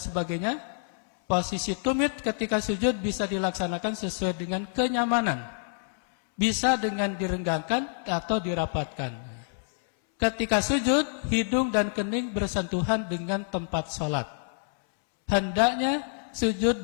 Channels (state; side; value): silent; right; 60 dB below the other